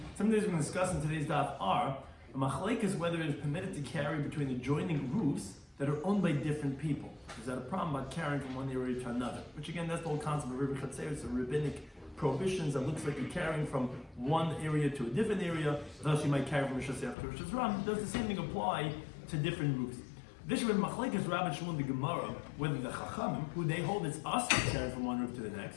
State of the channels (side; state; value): right; drops out; at 17.2 s